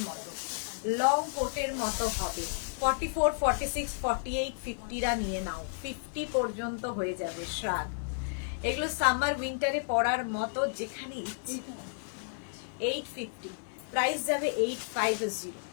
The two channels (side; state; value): right; silent; digital silence